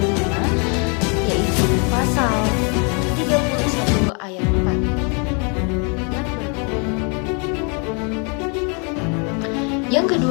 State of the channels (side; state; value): right; quieter; 35.6 dB